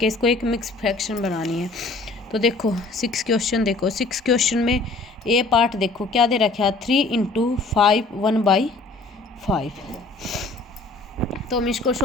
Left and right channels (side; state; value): right; quieter; 3.4 dB